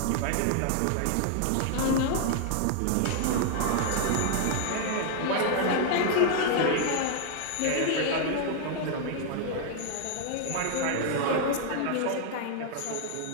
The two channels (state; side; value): different; both; correlation 0.00